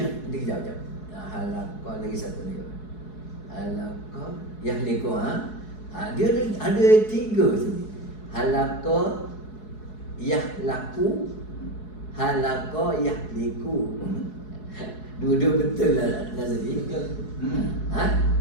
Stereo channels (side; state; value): right; late; 4.7 ms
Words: Nanti jap. Halaqah lagi satu ni. Halaqah yahliku dia ada 3 sini. Halaqah yahlaku, halaqah yahliku. Dua-dua betul lah Nazri.